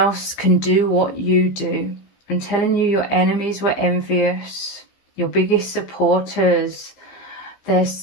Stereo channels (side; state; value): right; late; 15 ms